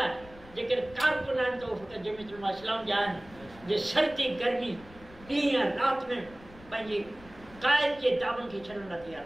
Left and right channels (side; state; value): left; noise; rumble, 20 dB below the sound